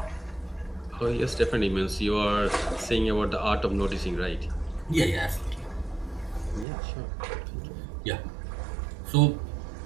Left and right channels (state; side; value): drops out; left; at 6.7 s